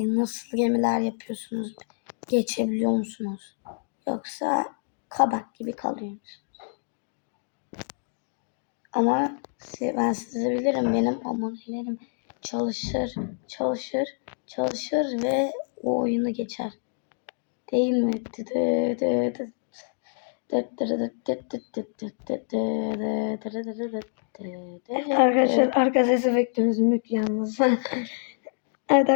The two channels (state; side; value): silent; right; digital silence